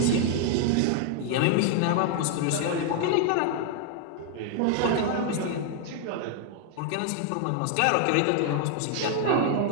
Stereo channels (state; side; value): different; both; correlation 0.00